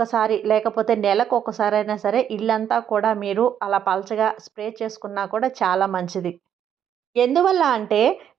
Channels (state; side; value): quieter; left; 9.3 dB